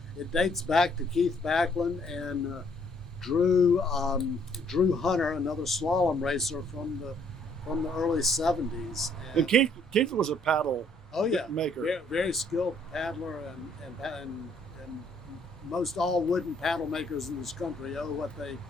it dates back to Keith Backlund and Drew Hunter, another slalom racer from the early 70s. And Keith was a paddle maker. Very, very skilled paddler, and most all wooden paddle makers in this country owe what they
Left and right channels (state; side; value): normal; both; correlation 0.65